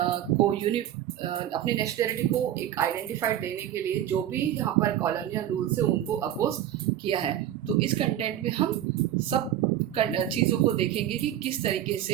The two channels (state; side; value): quieter; left; 11.6 dB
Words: को अपनी नेशनलिटी को एक आइडेंटिफाइड देने के लिए जो भी यहाँ पर कॉलोनियल रूल से उनको अपोज किया है. तो इस कंटेंट में हम सब चीज़ों को देखेंगे कि किस तरीके से